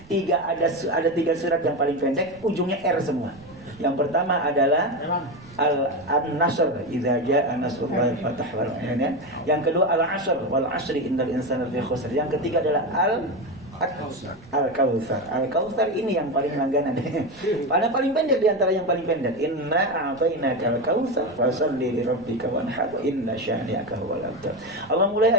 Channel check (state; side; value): noise; right; rumble, 24 dB below the sound